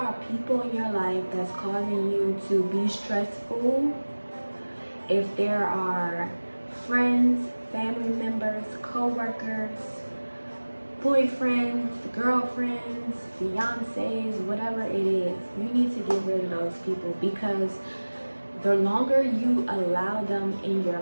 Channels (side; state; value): both; inverted; correlation -1.00